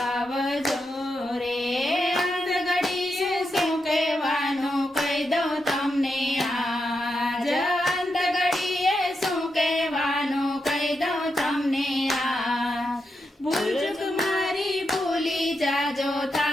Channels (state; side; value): normal; both; correlation 0.85